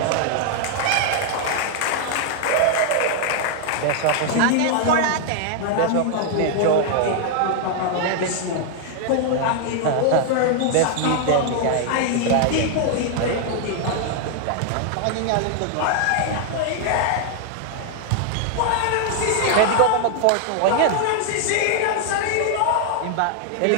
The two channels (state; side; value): different; both; correlation 0.00